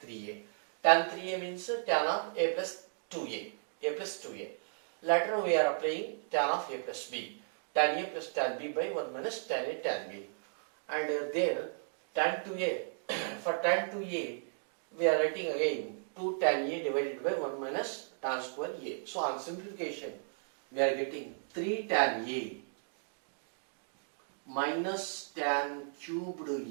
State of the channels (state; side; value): silent; left; digital silence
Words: 3A means tan of A plus 2A. Later we are applying tan of A plus B. Tan A plus tan B by 1 minus tan A tan B. And there tan 2A, for tan 2A we are writing again 2 tan A divided by 1 minus tan square A. So on simplification we are getting 3 tan A minus tan cubed